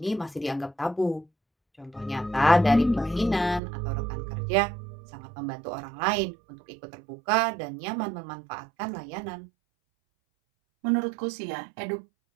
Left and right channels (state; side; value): drops out; left; at 3.6 s